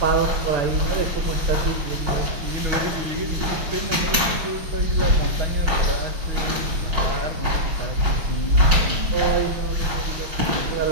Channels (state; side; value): late; left; 5.3 ms